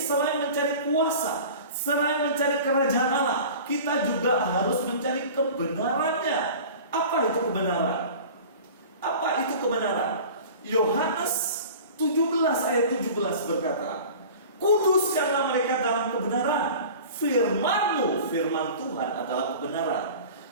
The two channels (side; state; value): both; inverted; correlation -0.39